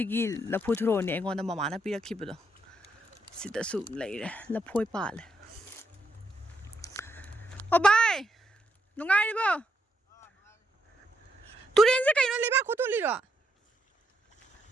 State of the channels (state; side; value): normal; both; correlation 0.78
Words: thro ne engonda mama na pirakhibudo sida su leire laphoi pale o bai nungai ribo turen se kaino leba khotoli ro